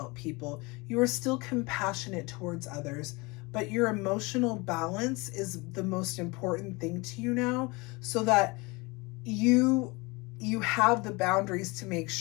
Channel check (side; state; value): right; quieter; 25.8 dB